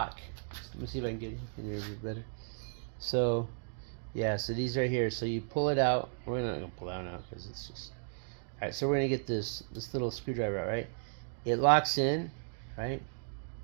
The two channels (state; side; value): silent; left; digital silence